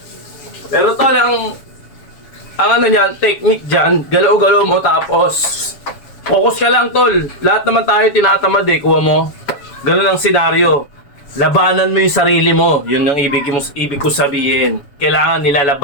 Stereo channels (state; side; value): late; right; 7.1 ms